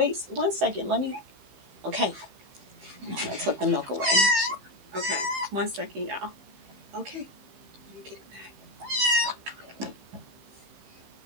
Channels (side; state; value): left; late; 15 ms